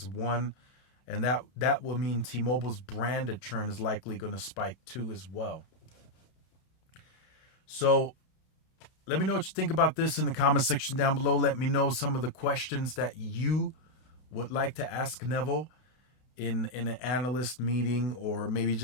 one. And that will mean T-Mobile's branded churn is likely going to spike too as well. So let me know what you think about this in the comment section down below. Let me know some of the questions that you would like to ask Neville in an analyst meeting, or maybe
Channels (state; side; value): late; right; 31 ms